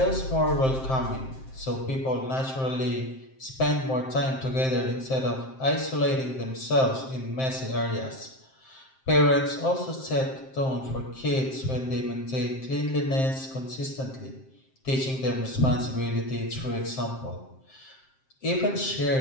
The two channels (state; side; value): late; right; 7.6 ms